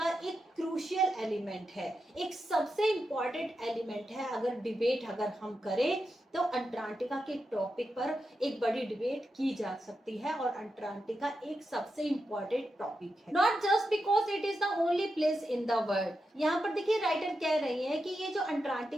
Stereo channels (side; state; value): both; normal; correlation 0.88